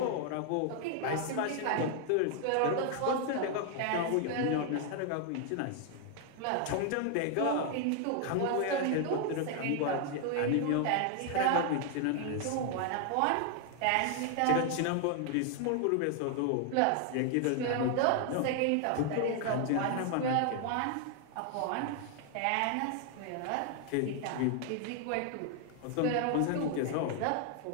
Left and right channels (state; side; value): different; both; correlation 0.00